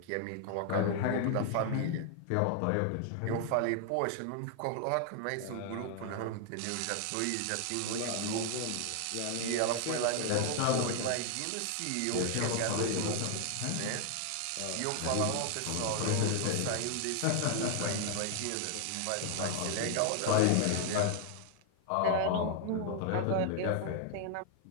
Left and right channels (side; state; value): both; different; correlation 0.00